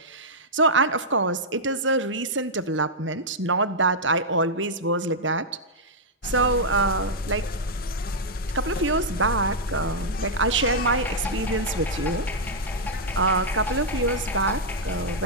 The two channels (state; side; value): normal; both; correlation -0.06